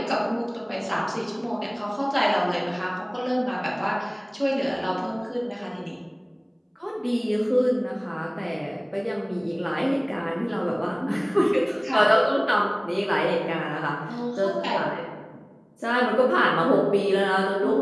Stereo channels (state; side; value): identical; both; correlation 1.00